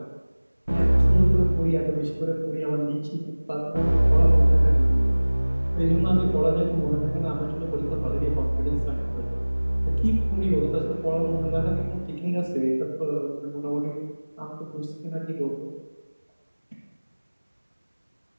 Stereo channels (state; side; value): inverted; both; correlation -1.00